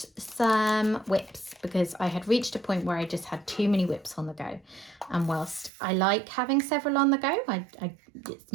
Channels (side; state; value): left; drops out; at 5.7 s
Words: some whips, because I had reached a point where I just had too many whips on the go. And whilst I like having several on the go,